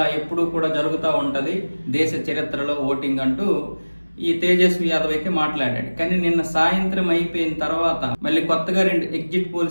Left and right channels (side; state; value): both; inverted; correlation -1.00